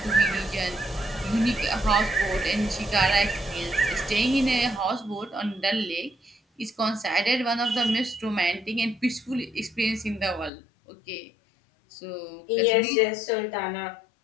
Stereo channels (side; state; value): right; drops out; at 10.5 s